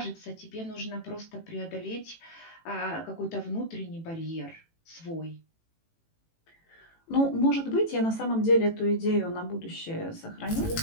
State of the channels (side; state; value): right; late; 18 ms